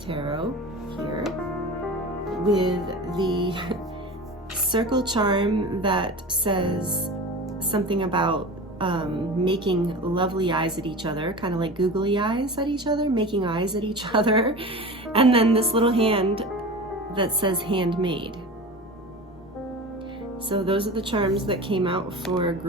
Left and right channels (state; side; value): normal; both; correlation 0.32